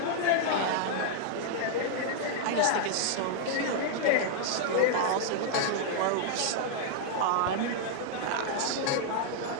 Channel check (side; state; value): both; different; correlation -0.01